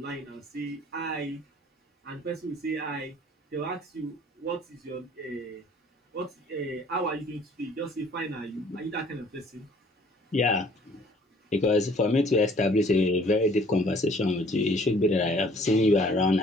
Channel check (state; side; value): normal; both; correlation 0.56